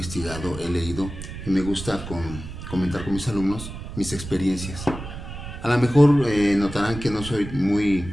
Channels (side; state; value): right; noise; rumble, 10 dB below the sound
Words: he leído y me gusta comentar con mis alumnos mis experiencias. A lo mejor notarán que no soy muy